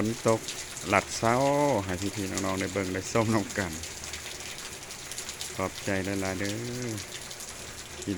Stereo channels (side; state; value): both; identical; correlation 1.00